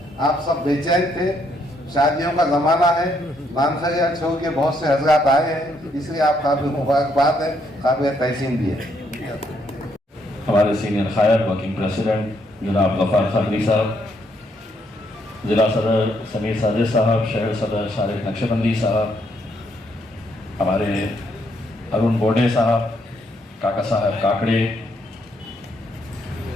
आप सब बेचैन थे, शादियों का जमाना है, मानसरिया छोड़ के बहुत से हजरात आए हैं, इसलिए आप काबिल मुबारकबाद है, काबिल तहसीन भी है। हमारे सीनियर कायद वर्किंग प्रेसिडेंट जनाब गफ्फार खदरी साहब, जिला सदर समीर साजिद साहब, शहर सदर शारिक नक्शबंदी साहब, हमारे अरुण बोडे साहब, काका साहब काकड़े,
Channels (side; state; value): both; normal; correlation 0.73